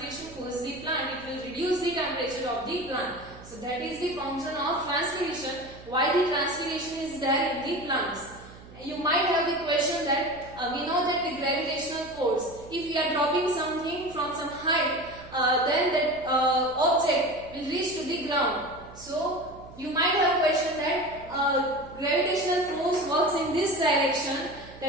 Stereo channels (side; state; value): right; noise; hum, 19 dB below the sound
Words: cools the plant. It will reduce the temperature of the plant. So that is the function of transpiration. Why the transpiration is there in the plants? You might have the question that we know that the gravitational force, if we are dropping something from some height, then that object will reach to the ground. So you might have question that gravitational force works in this direction.